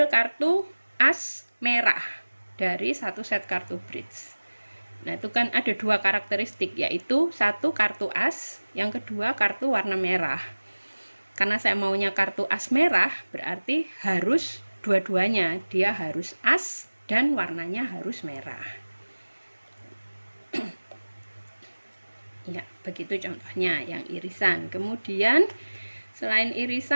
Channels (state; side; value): inverted; both; correlation -1.00